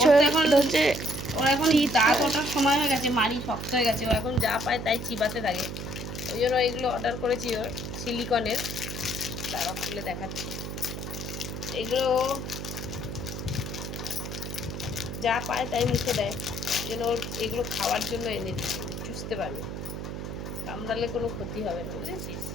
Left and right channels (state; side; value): noise; right; hum, 6 dB below the sound